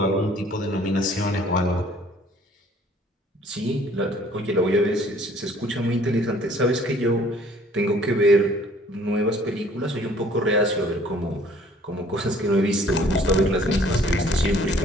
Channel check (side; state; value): both; normal; correlation 0.56